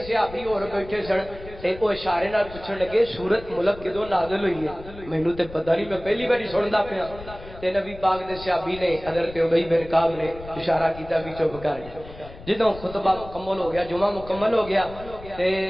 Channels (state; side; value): noise; left; rumble, 16 dB below the sound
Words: صحابی اور بیٹھے سن تے او اشارے نال پوچھن لگے سورت ملک کدوں نازل ہوئی ہے؟ مینوں تے پتہ نہیں، میں پہلی باری سندا پیا۔ تے نبی پاک دے صحابی نے حضرت ابی بن کعب نے اشارہ کیتا بھی چپ کر جا۔ جدوں خطبہ مکمل ہو گیا، جمعہ مکمل ہو گیا، تے